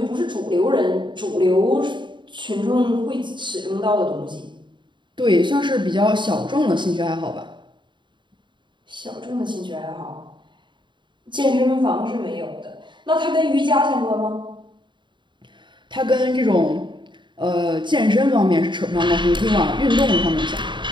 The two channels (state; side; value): late; left; 0.23 ms